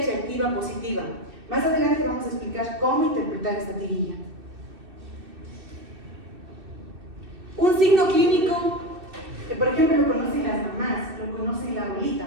reactiva positiva. Más adelante vamos a explicar cómo interpretar esta tirilla. Un signo clínico que, por ejemplo, lo conocen las mamás, lo conocen la abuelita.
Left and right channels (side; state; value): left; late; 2.6 ms